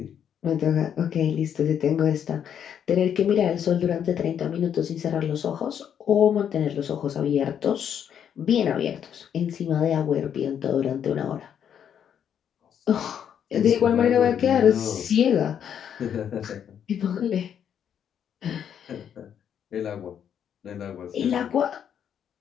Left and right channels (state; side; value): quieter; right; 8.8 dB